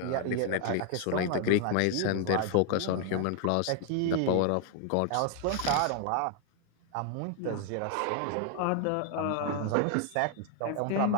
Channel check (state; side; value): different; both; correlation 0.00